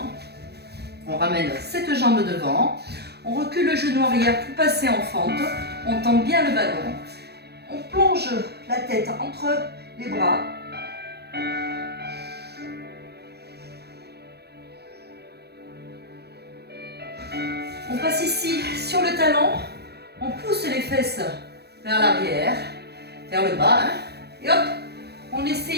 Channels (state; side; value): late; left; 0.47 ms